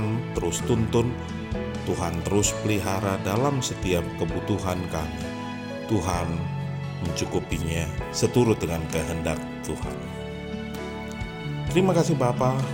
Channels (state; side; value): identical; both; correlation 1.00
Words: terus tuntun, Tuhan terus pelihara dalam setiap kebutuhan kami. Tuhan mencukupinya seturut dengan kehendak Tuhan. Terima kasih Bapa.